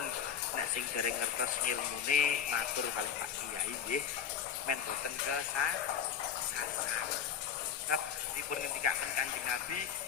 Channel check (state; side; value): quieter; right; 8.0 dB